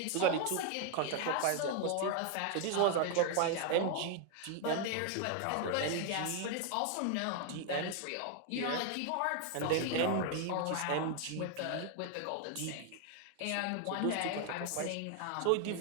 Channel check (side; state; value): both; different; correlation 0.00